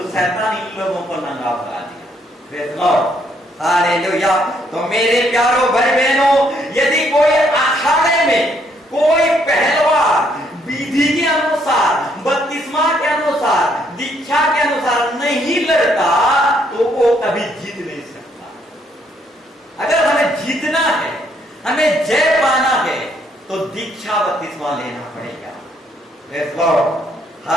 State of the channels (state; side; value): normal; both; correlation 0.70